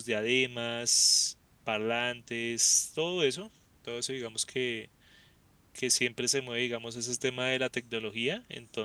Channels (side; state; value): both; identical; correlation 1.00